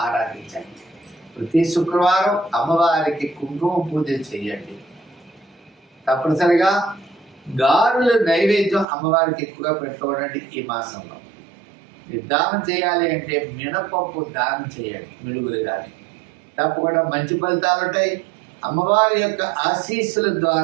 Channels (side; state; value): left; drops out; at 8.8 s